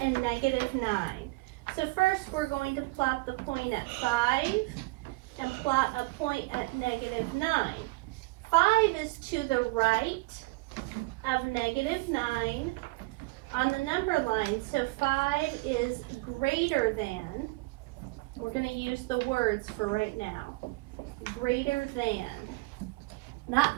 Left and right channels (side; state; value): left; quieter; 23.2 dB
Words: -9. So first we're going to plot the point at 5 and plot a point at -9. 5 is to the right of -9 on the number line. So 5 is greater than, we're going to use the words for right now. Greater than.